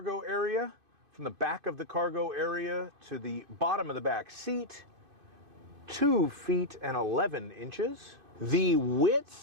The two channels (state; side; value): late; left; 2.5 ms